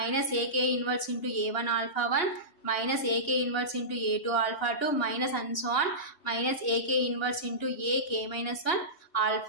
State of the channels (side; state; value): right; late; 2.8 ms